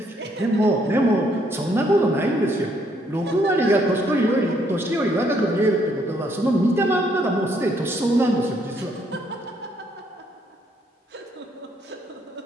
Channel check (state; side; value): normal; both; correlation 0.70